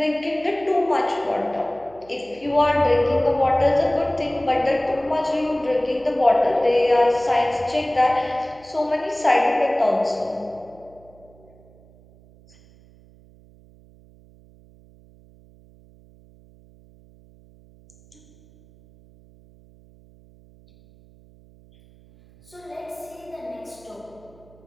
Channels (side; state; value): right; noise; hum, 26 dB below the sound